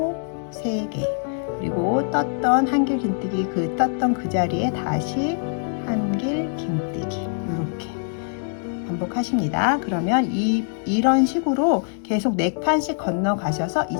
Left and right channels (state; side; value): silent; right; digital silence